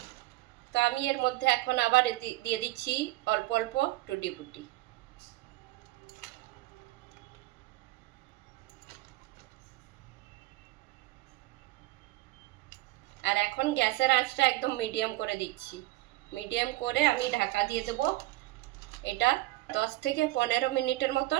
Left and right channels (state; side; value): quieter; left; 18.8 dB